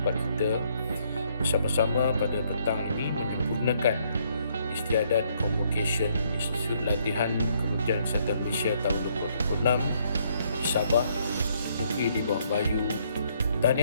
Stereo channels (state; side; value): inverted; both; correlation -0.69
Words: kita bersama-sama pada petang ini menyempurnakan istiadat convocation Institut Latihan Kementerian Kesihatan Malaysia tahun 2026 di Sabah, negeri di bawah Bayu.